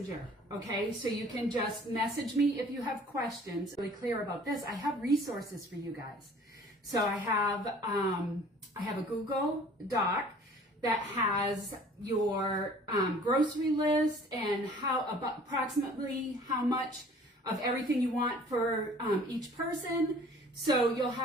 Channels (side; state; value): both; normal; correlation 0.51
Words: okay? So you can just message me if you have questions. Really clear about this. I have resources for you guys. So I have a Google Doc that has your grocery list and approximately how much of everything you want for each person. So you'll